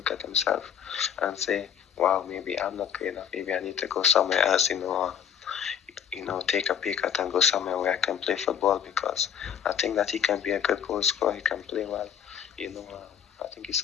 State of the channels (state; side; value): quieter; right; 8.6 dB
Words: at himself and say, wow, maybe I'm not good enough. Maybe I need to go somewhere else, take a pay cut and go somewhere where I can play football, because I think that he can be a good goal scorer. He can play well. I think he